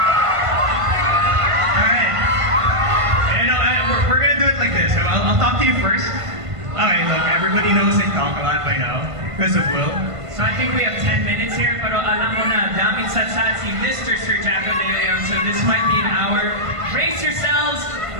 Alright, because of Wil. So I think we have 10 minutes here, pero alam mo na, daming satsat si Mr. Sir Jacko De Leon, so this might be an hour. Brace yourselves,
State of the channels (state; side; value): late; left; 1.5 ms